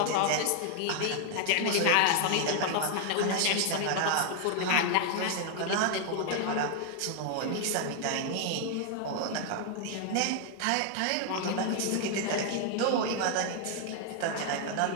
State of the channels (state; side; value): different; both; correlation 0.00